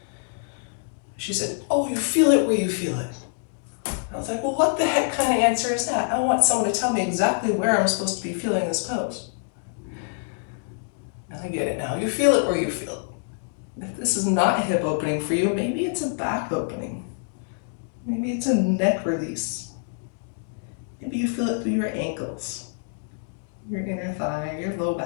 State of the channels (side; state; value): right; silent; digital silence